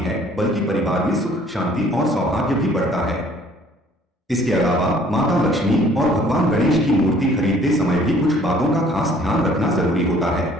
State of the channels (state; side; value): normal; both; correlation 0.57